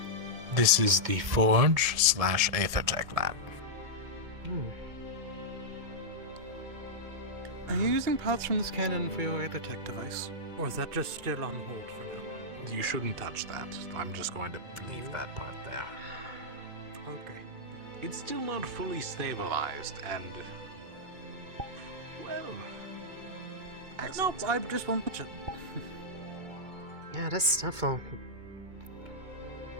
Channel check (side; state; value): left; late; 2.2 ms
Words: This is the Forge/Aethertech lab. Are you using parts from this cannon for your Aethertech device? Or is that just still on hold for now? You shouldn't touch that. I'm just going to leave that part there. Okay. It's still not fully stabilized, and... well... No, I just want to... Yeah, this stuff will...